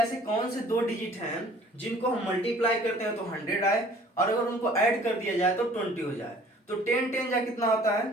कौन से दो डिजिट हैं जिनको हम मल्टीप्लाई करते हैं तो 100 आए, और अगर उनको ऐड कर दिया जाए तो 20 हो जाए। तो 10 10 जा कितना होता है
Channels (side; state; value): both; normal; correlation 0.52